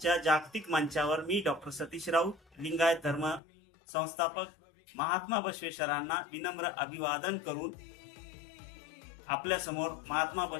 जागतिक मंचावर मी डॉक्टर सतीश राऊत लिंगायत धर्म संस्थापक महात्मा बसवेश्वरांना विनम्र अभिवादन करून आपल्या समोर महात्मा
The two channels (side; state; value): right; drops out; at 3.4 s